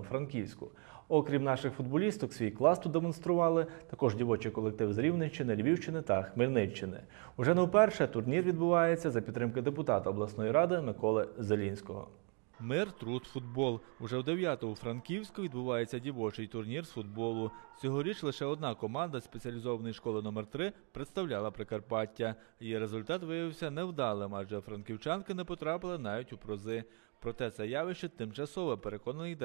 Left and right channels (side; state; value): left; quieter; 36.6 dB